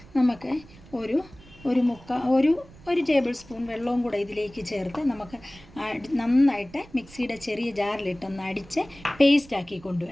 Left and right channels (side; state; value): right; noise; rumble, 22 dB below the sound